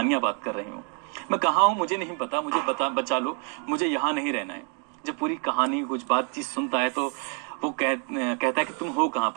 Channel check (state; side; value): quieter; left; 37.5 dB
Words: बात कर रही हूँ, मैं कहाँ हूँ मुझे नहीं पता, मुझे बचा लो, मुझे यहाँ नहीं रहना है। जब पूरी कहानी कुछ बातचीत सुनता है तो वो कहता है कि तुम हो कहाँ